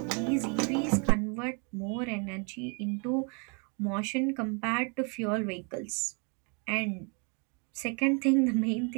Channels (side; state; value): left; quieter; 35.5 dB